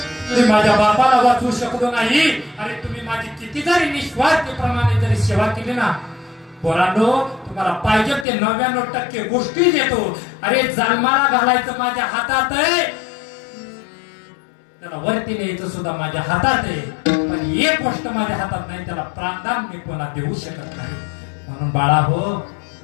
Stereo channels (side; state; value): right; drops out; at 8.2 s